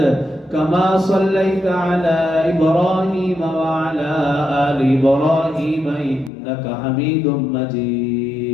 كما صليت على إبراهيم وعلى آل إبراهيم إنك حميد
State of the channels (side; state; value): right; drops out; at 6.3 s